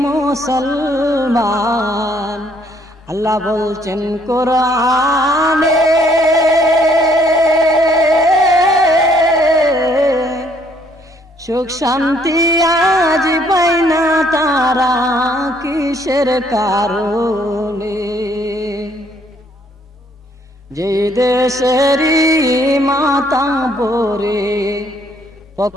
মুসলমান আল্লাহ বলছেন কোরআনে সুখ শান্তি আজ পাই না তারা কিসের কারণে যে দেশেরই মাতা বরে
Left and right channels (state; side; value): normal; both; correlation 0.65